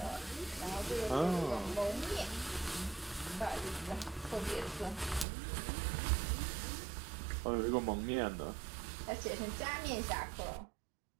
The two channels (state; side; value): drops out; left; at 5.2 s